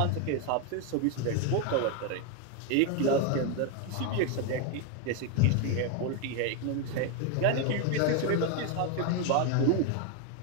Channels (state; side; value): different; both; correlation 0.01